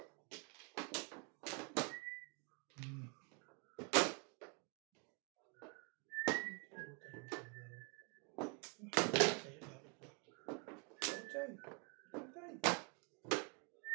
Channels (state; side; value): quieter; left; 35.1 dB